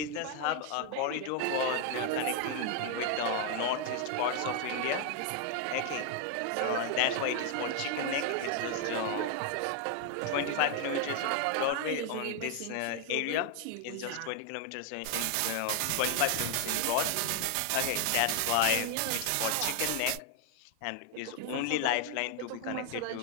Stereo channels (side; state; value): both; different; correlation 0.00